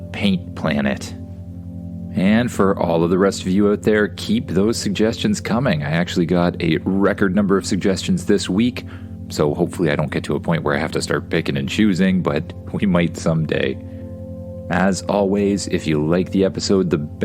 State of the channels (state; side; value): identical; both; correlation 1.00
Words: Paint Planet. And for all of the rest of you out there, keep those suggestions coming. I actually got a record number of suggestions this week, so hopefully I don't get to a point where I have to start picking and choosing, but we might someday. As always, if you like the episode, the